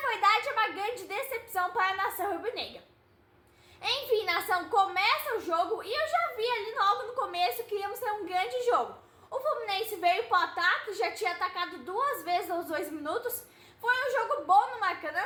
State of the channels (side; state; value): both; identical; correlation 1.00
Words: verdade é uma grande decepção para a nação rubro-negra. Enfim, nação, começa o jogo e eu já vi ali logo no começo que íamos ter um grande jogo. O Fluminense veio para o ataque, já tinha atacado 2 vezes aos 2 minutos. Foi um jogo bom no Maracanã.